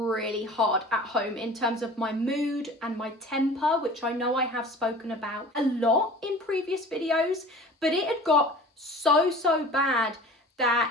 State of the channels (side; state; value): both; normal; correlation 0.42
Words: hard at home in terms of my mood and my temper, which I know I have spoken about a lot in previous videos, but it had got so bad